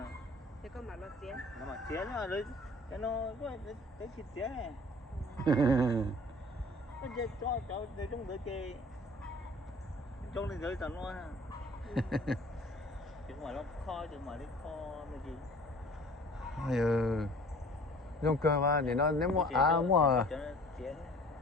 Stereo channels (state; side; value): normal; both; correlation 0.49